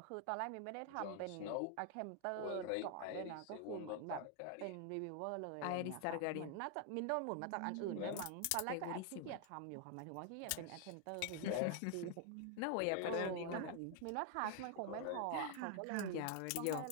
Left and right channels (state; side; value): different; both; correlation 0.00